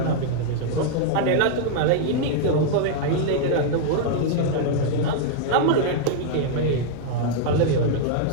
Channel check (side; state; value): both; different; correlation -0.01